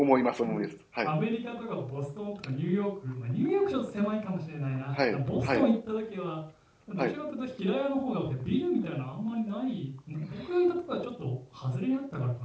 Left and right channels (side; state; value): both; identical; correlation 1.00